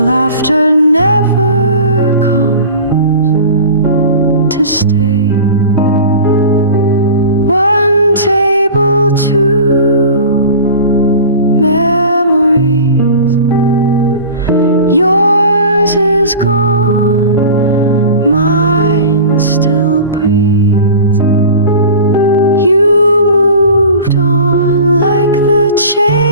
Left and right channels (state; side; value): inverted; both; correlation -0.36